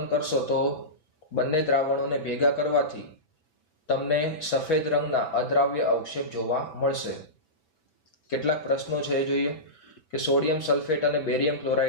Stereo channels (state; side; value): late; right; 5.6 ms